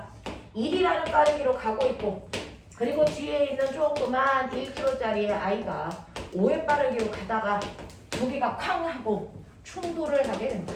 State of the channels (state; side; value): identical; both; correlation 1.00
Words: 1이라는 빠르기로 가고 있고, 그리고 뒤에 있는 조그만 1kg짜리 아이가 5의 빠르기로 가다가 두 개가 쾅 하고 충돌을 하게 된다.